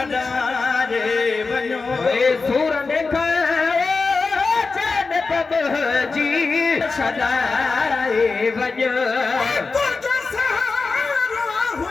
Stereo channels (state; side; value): quieter; right; 4.2 dB